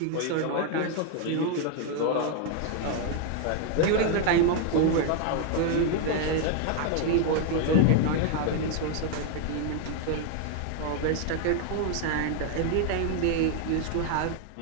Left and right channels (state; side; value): different; both; correlation 0.01